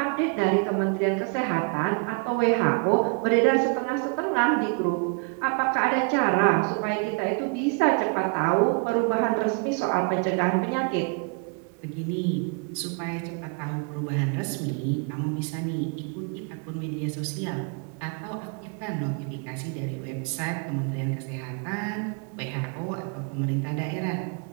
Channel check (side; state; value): left; quieter; 35.8 dB